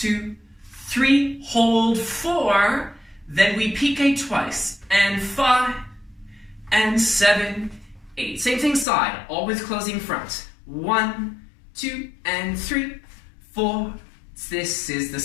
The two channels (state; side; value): drops out; right; at 8.8 s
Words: 3, hold 4. Then we pique twice. And 5, and 7, 8. Same thing side. Always closing front. 1, 2, and 3, 4. This is the